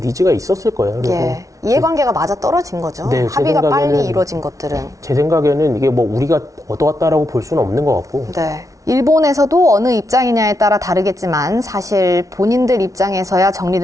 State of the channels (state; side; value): late; left; 0.16 ms